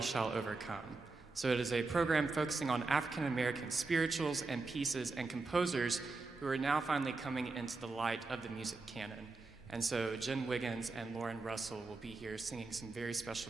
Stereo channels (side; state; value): left; quieter; 3.7 dB